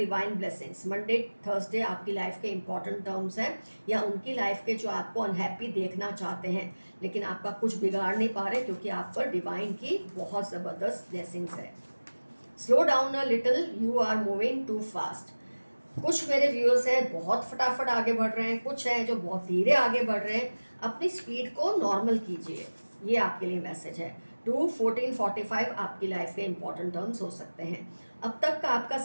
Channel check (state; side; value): inverted; both; correlation -1.00